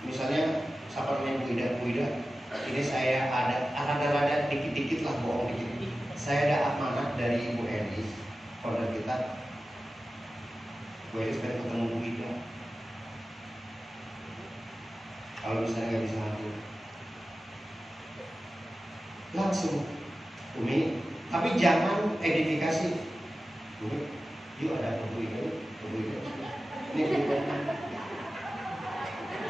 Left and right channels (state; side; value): normal; both; correlation 0.94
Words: misalnya siapa namanya Bu Ida, ini saya ada dikit-dikit lah bohong dikit. Saya ada amanat dari Ibu Elis, founder kita. Bu Elis pengen ketemu Bu Ida. Kalau misalnya nggak bisa hadir, langsung Umi, tapi jangan edifikasi. Umi, yuk ada Bu Ida. Ini Bu Ida.